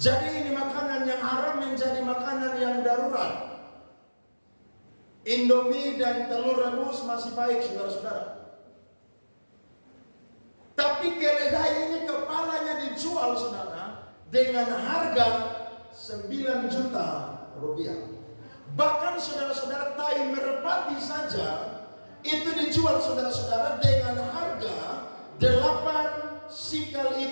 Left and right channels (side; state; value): both; inverted; correlation -1.00